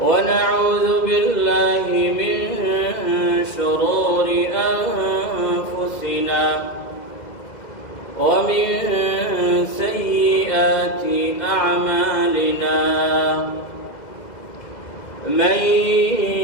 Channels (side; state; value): right; late; 2.0 ms